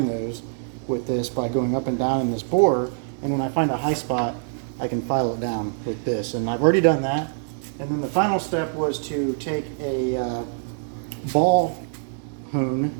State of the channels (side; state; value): left; silent; digital silence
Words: those with this by going up and down in this bore, and when I find a high spot, I can file it down with this. And I've already done that. And then the final step was to take a ball hone